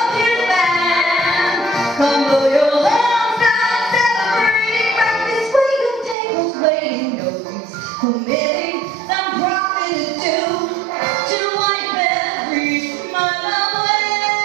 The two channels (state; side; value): drops out; left; at 6.2 s